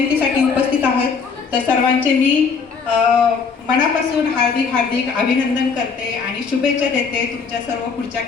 उपस्थित आहात, तर सर्वांचे मी मनापासून हार्दिक हार्दिक अभिनंदन करते आणि शुभेच्छा देते तुमच्या सर्व पुढच्या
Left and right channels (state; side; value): quieter; right; 5.4 dB